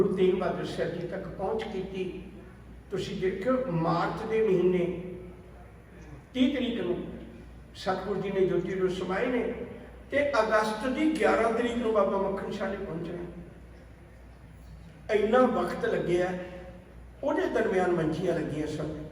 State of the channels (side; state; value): both; identical; correlation 1.00